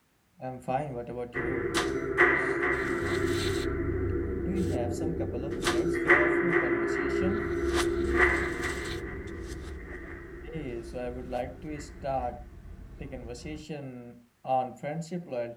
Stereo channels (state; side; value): identical; both; correlation 1.00